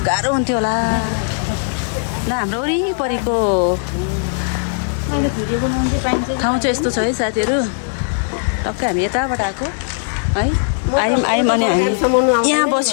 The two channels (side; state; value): right; silent; digital silence